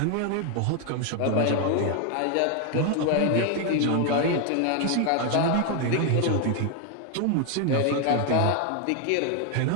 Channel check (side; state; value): both; different; correlation 0.00